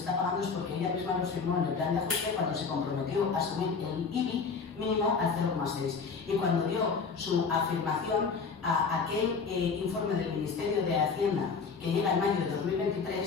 pagando es porque ella misma los firmó en el plan de ajuste cuando se comprometió a subir el IBI mínimo al 0,6. Y cuando dio su afirmación a aquel informe del Ministerio de Hacienda que llega en mayo de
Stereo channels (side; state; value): right; quieter; 5.2 dB